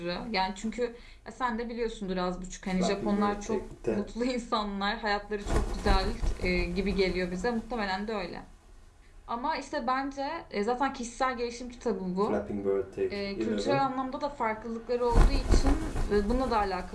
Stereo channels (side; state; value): both; identical; correlation 1.00